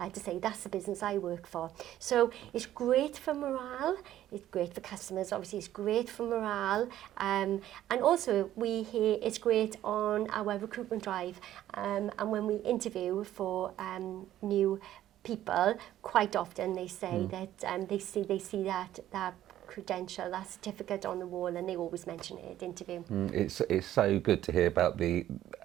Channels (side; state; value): left; quieter; 12.7 dB